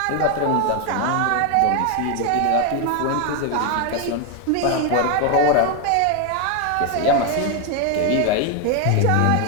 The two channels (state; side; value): different; both; correlation 0.01